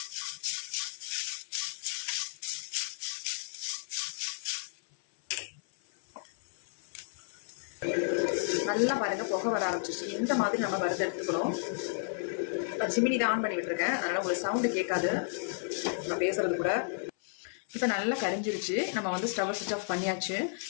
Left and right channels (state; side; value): silent; right; 56 dB below the other